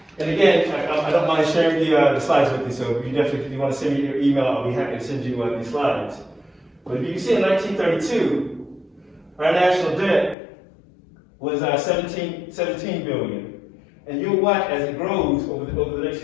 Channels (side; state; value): right; drops out; at 10.4 s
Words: And again, I don't mind sharing the slides with you, so if you want to send me your email, I'll be happy to send you these slides. But if you can see in 1932, our national debt was 17 billion. And you'll watch as it grows over the next